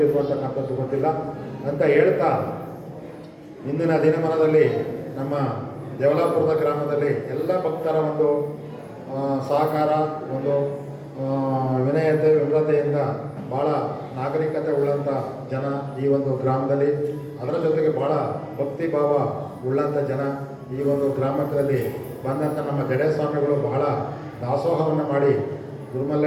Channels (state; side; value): identical; both; correlation 1.00